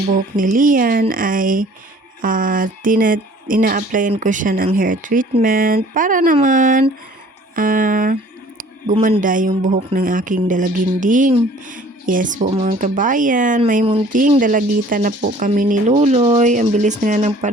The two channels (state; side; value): normal; both; correlation 0.52